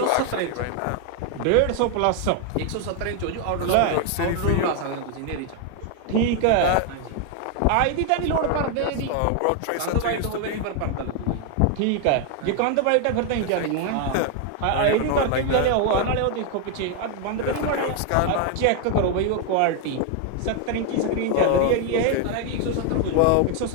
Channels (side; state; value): both; different; correlation 0.01